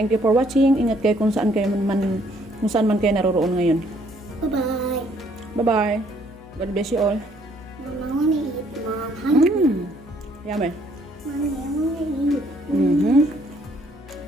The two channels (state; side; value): noise; left; hum, 22 dB below the sound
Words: you for watching. Ingat kayo kung saan man kayo naroroon ngayon. Bye-bye. Bye-bye. God bless you all. Mom, I want to eat, Mom. Hungry. Yummy. Mommy, I want to eat.